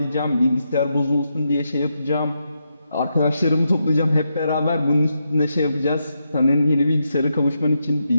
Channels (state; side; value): inverted; both; correlation -0.84